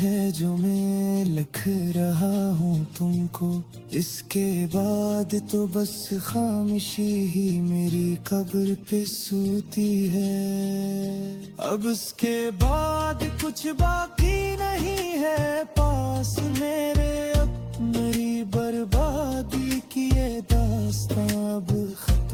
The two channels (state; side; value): identical; both; correlation 1.00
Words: जो मैं लिख रहा हूँ तुमको, इसके बाद तो बस खामोशी ही मेरी कब्र पे सोती है। अब उसके बाद कुछ बाकी नहीं है पास मेरे, अब मेरी बर्बादी की ये दास्तां अब